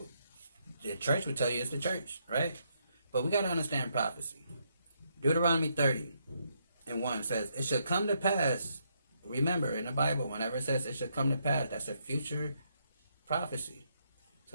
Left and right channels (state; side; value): inverted; both; correlation -0.76